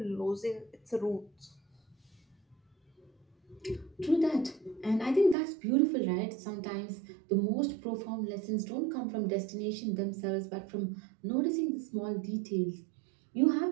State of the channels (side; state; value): left; drops out; at 5.4 s